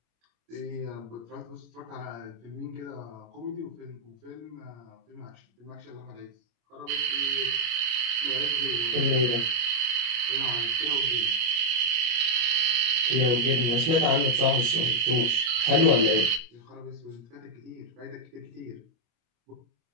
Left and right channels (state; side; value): late; left; 25 ms